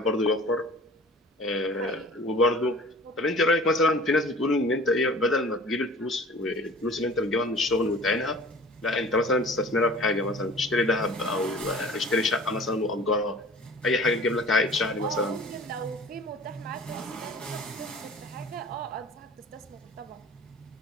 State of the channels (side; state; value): both; normal; correlation 0.44